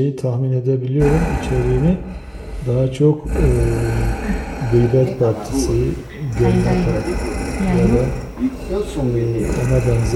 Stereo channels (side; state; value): both; identical; correlation 1.00